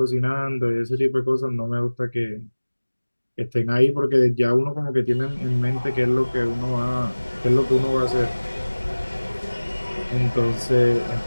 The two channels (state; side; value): inverted; both; correlation -1.00